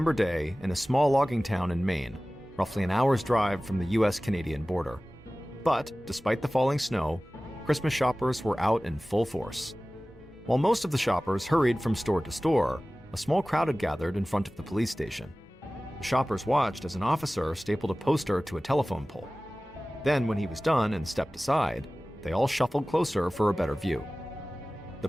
day in a small logging town in Maine, roughly an hour's drive from the US-Canadian border. But, despite the falling snow, Christmas shoppers were out in full force. While most of the shoppers hurried from store to store, a small crowd had gathered in front of the police station. The shoppers watched as an officer stapled a poster to a telephone pole. Then, when he was done and stepped aside, they all shuffled closer for a better view. The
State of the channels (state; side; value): normal; both; correlation 0.97